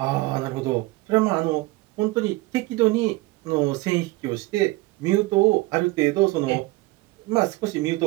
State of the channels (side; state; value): left; quieter; 21.0 dB